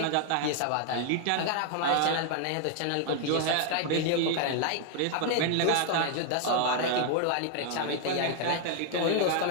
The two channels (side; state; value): both; different; correlation 0.00